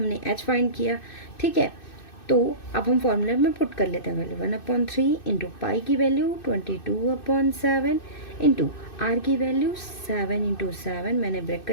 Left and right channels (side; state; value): right; late; 2.6 ms